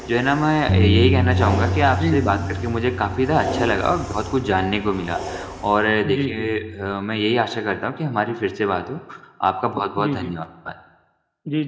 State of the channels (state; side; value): identical; both; correlation 1.00